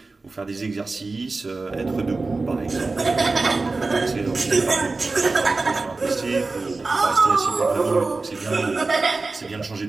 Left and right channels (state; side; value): quieter; left; 3.6 dB